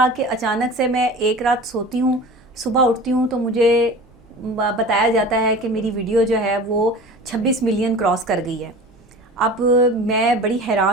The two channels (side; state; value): both; normal; correlation 0.37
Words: کہ اچانک سے میں ایک رات سوتی ہوں, صبح اٹھتی ہوں تو مجھے بتایا جاتا ہے کہ میری ویڈیو جو ہے وہ 26 ملین کراس کر گئی ہے. اب میں بڑی